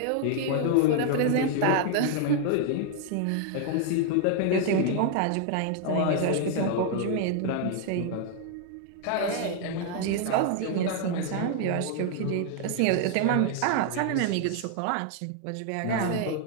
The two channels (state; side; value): different; both; correlation 0.00